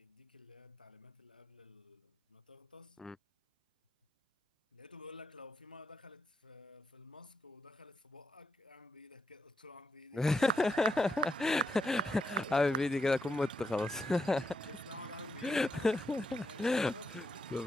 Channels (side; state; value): both; normal; correlation 0.83